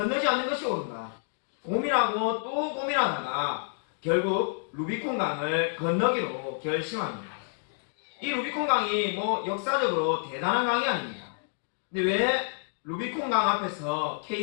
않는 것이 옳은가? 고민하고 또 고민하다가 결국 루비콘 강을 건너기로 결심합니다. 이 루비콘 강이 역사적으로 대단한 강이 아닙니다. 근데 왜 루비콘 강 앞에서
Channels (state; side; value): silent; right; digital silence